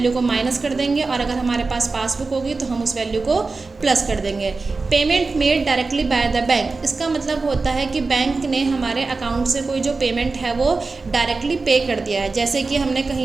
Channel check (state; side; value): quieter; left; 3.9 dB